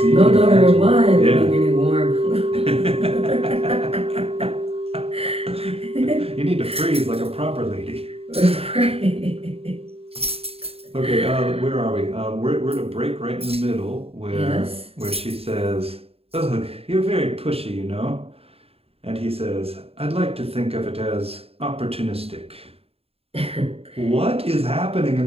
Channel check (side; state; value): left; late; 0.28 ms